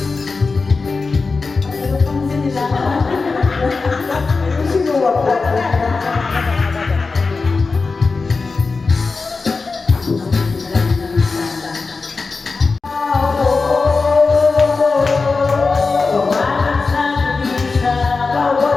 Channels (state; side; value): quieter; right; 4.2 dB